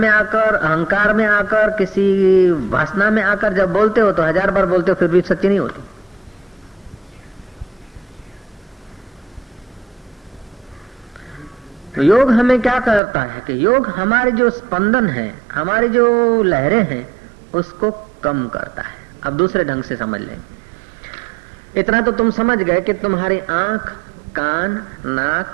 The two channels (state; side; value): drops out; left; at 13.0 s